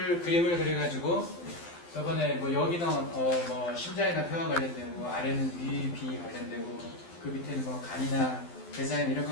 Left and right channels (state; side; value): late; right; 12 ms